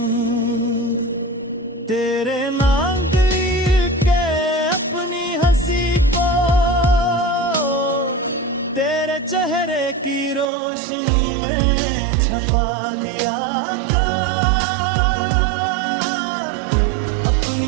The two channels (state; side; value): drops out; left; at 10.5 s